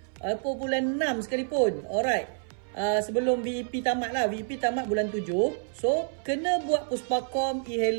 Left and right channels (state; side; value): silent; left; 59 dB below the other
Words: ataupun bulan 6 sekalipun. Alright. Sebelum VEP tamat lah. VEP tamat bulan 7. So, kena buat Puspakom